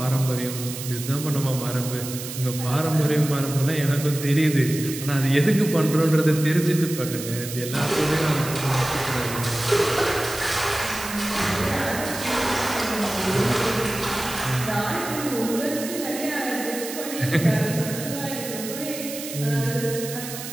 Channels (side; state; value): right; noise; hiss, 9 dB below the sound